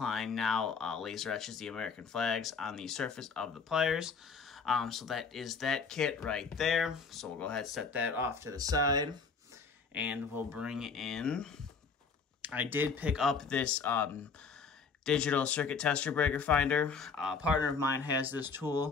now laser etches the American flags on the surface of the pliers. So that is that kit right there. So we'll go ahead and set that off to the side. And we'll bring in, I did pick up this digital circuit tester breaker finder. A partner of mine has this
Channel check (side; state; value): right; quieter; 5.2 dB